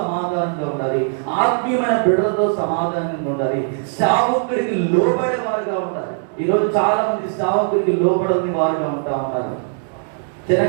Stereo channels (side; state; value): left; silent; digital silence